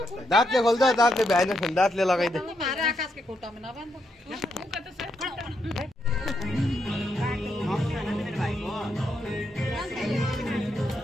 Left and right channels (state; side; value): normal; both; correlation 0.80